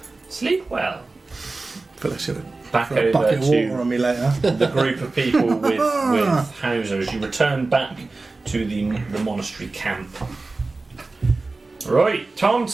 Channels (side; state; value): left; quieter; 3.5 dB